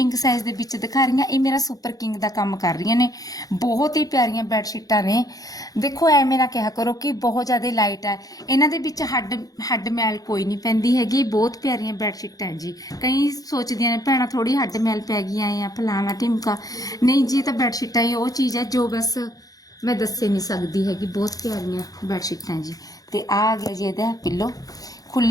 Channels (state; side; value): late; right; 0.18 ms